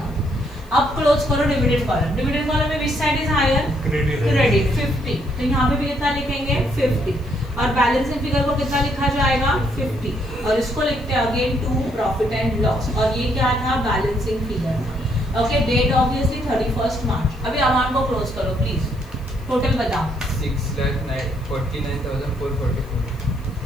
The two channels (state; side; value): noise; left; hiss, 28 dB below the sound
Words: अब क्लोज करो डिविडेंड कॉलम में which side is higher, credit 50, तो यहाँ पे भी कितना लिखेंगे 50 और बैलेंसिंग फिगर को कितना लिखा जाएगा 50 और इसको लिखते हैं again to profit and loss और ये क्या था balancing figure. Okay, date obviously 31 March. अभी अमाउंट को क्लोज करो प्लीज, टोटल बताओ 6,49,444।